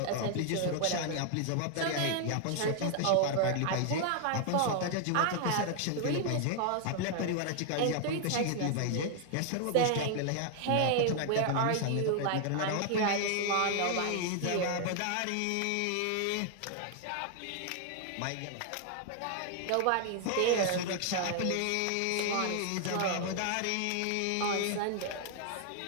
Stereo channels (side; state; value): both; different; correlation 0.00